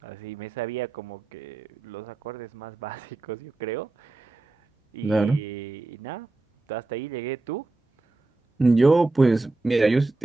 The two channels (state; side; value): quieter; left; 3.2 dB